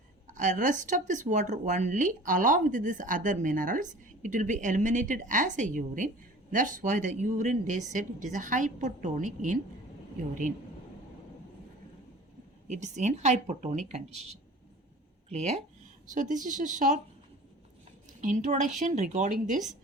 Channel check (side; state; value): both; normal; correlation 0.43